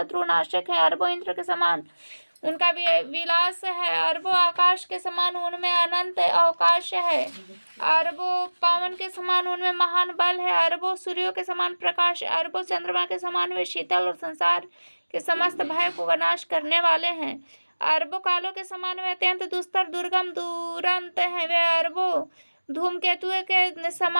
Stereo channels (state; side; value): inverted; both; correlation -1.00